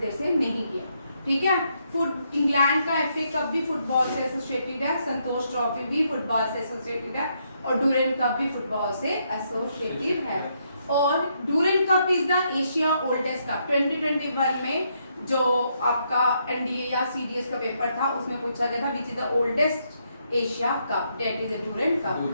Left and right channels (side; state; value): both; inverted; correlation -0.76